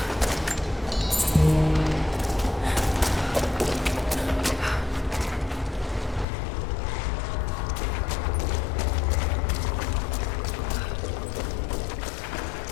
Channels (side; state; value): right; drops out; at 6.2 s